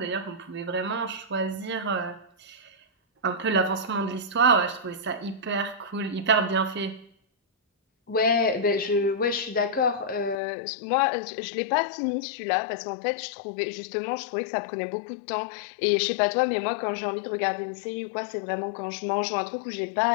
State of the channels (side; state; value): right; drops out; at 10.4 s